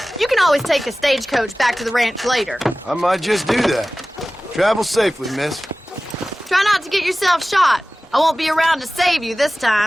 You can always take a stagecoach back to the ranch later. I might just do that. Travel safely, miss. Try not to get yourself shot. I won't be around to save you this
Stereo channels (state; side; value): normal; both; correlation 0.97